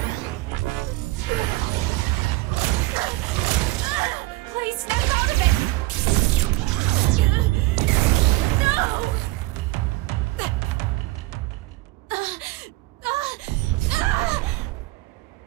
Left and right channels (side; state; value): left; quieter; 19.4 dB